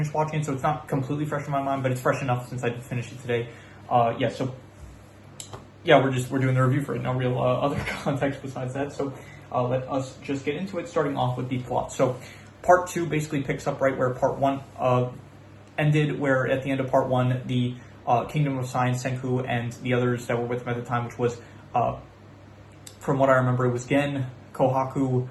watching it, so it's not completely fresh in my mind, but it's fresh enough since I did finish it today. We're doing the review for it. No real other context besides that, so let us just get into it, starting off with the plot. So, Part 2 basically picks up right where Part 1 ended, where at the end of Part 1, the Kingdom of Science, Senku, and the others that were with him at the time, which was, from what I remember, it was Gen, Kohaku,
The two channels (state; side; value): identical; both; correlation 1.00